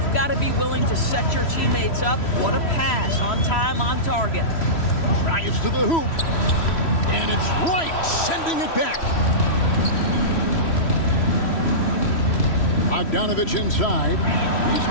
got to be willing to set your teammates up. What a pass, on time, on target. Drives to the hoop. And it's Wright sending it back. Bogdanovich inside. He's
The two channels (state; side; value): late; right; 3.1 ms